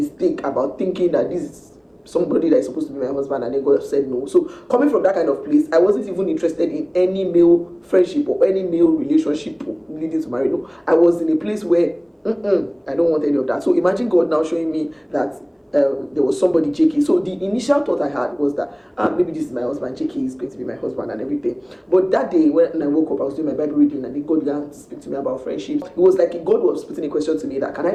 about thinking that this is somebody that is supposed to be my husband, and then God said no. So coming from that kind of place, I wasn't even interested in any male friendship or any male relationship leading to marriage. No, I was in a place where I don't want any of that. So imagine God now showing me that there was somebody, JK. So the initial thought I had was that maybe this is my husband, JK is going to be my husband and everything. But that day when I woke up, I was doing my Bible reading, and then God began to speak to me about friendship. It was like God was putting a question to me that, can I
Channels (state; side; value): identical; both; correlation 1.00